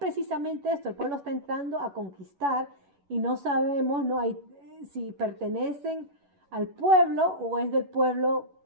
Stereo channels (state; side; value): late; left; 11 ms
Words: esto, el pueblo está entrando a conquistar y no sabemos si pertenecen al pueblo o es del pueblo